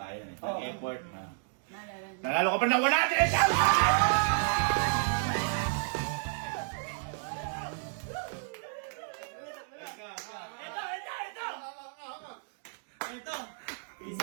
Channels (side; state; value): left; silent; digital silence